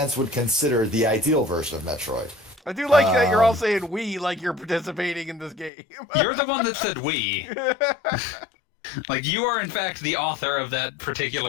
would consider the ideal version of Metroid. I do like that you're all saying we like you're participating in this game. You're the one that said we. Like, you are, in fact, the author of that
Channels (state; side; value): drops out; right; at 5.7 s